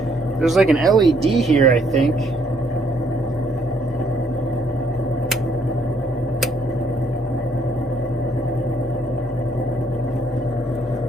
There's like an LED here, I think.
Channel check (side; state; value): both; normal; correlation 0.68